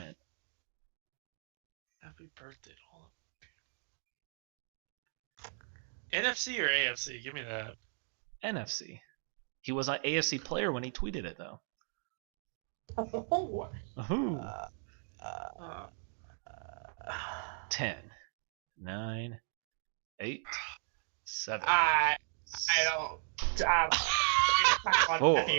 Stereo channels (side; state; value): left; silent; 54 dB below the other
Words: hint. Happy birthday to all of them. NFC or AFC? Give me that. NFC. He was an AFC player when he tweeted it, though. Oh. Ooh. 10, 9, 8, 7. I don't. Four,